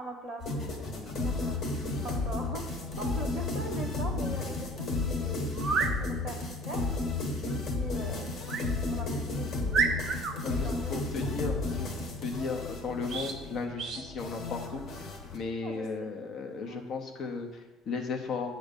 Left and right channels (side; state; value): both; normal; correlation 0.48